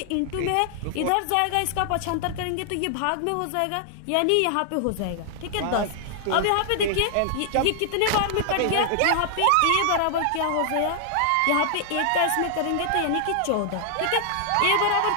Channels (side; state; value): both; different; correlation 0.00